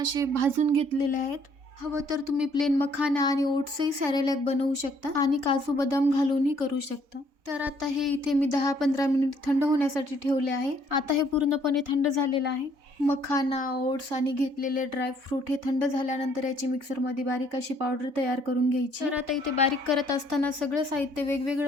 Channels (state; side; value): late; left; 3.5 ms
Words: भाजून घेतलेले आहेत। हवं तर तुम्ही प्लेन मखाना आणि ओट्सही सॅरेलॅक बनवू शकता आणि काजू बदाम घालूनही करू शकता। तर आता हे इथे मी 10-15 मिनिट थंड होण्यासाठी ठेवले आहे। आता हे पूर्णपणे थंड झालेलं आहे। मखाना, ओट्स आणि घेतलेले ड्रायफ्रूट हे थंड झाल्यानंतर याची मिक्सरमध्ये बारीक अशी पावडर तयार करून घ्यायची। तर आता इथे बारीक करत असताना सगळं साहित्य